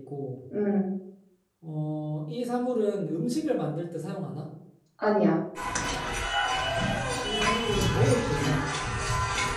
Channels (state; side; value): identical; both; correlation 1.00